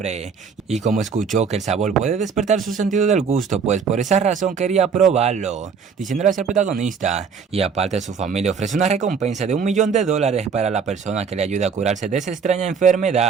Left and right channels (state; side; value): quieter; left; 6.1 dB